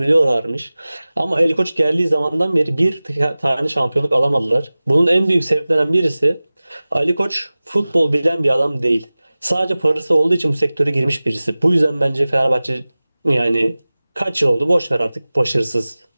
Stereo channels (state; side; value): inverted; both; correlation -0.98